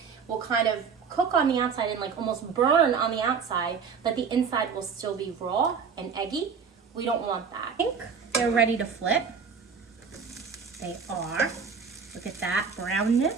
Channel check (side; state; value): left; quieter; 6.0 dB